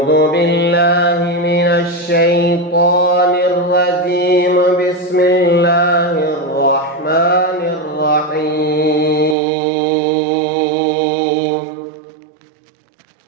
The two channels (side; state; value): left; drops out; at 9.3 s